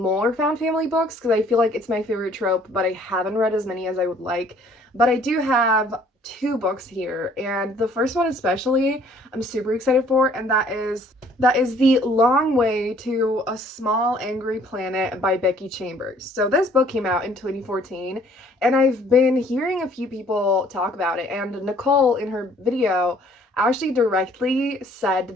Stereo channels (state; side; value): normal; both; correlation 0.58